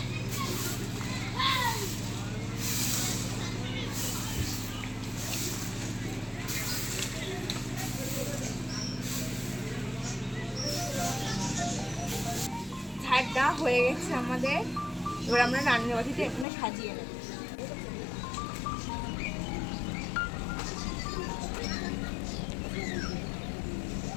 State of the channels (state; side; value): drops out; right; at 16.4 s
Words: ঝাড়টা হয়ে গেছে আমাদের, এবার আমরা রান্নাবাটিটা এখানে সাজিয়ে নেব।